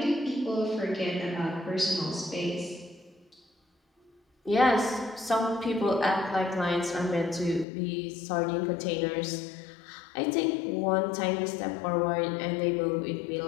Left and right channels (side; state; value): right; drops out; at 7.7 s